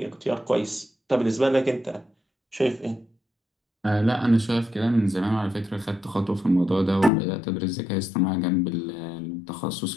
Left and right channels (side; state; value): right; drops out; at 7.1 s